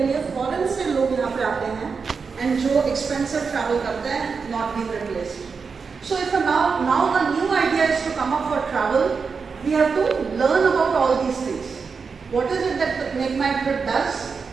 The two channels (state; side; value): quieter; left; 5.3 dB